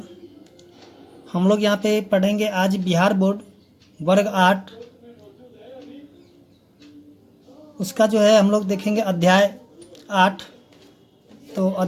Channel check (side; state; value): both; identical; correlation 1.00